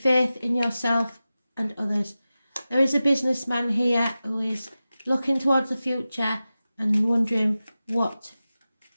in yourself and others. There is a businessman here who is looking towards the future and wondering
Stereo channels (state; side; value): inverted; both; correlation -0.94